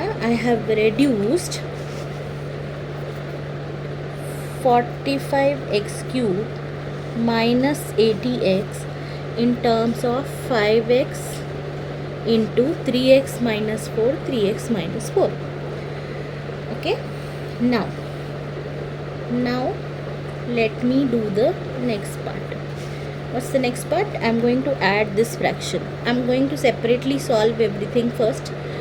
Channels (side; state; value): both; identical; correlation 1.00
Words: I have reduced 45x cube minus 80x in terms of 5x into 3x minus 4, 3x minus 4. Okay, now let me do the next part. What's the next part? I'm going to add this fraction. I'm going to separately solve everything first,